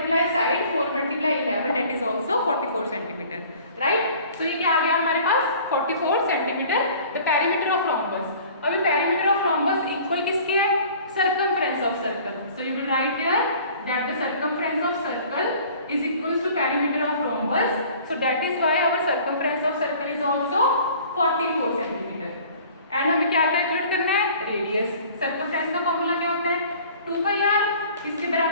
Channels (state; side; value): inverted; both; correlation -0.49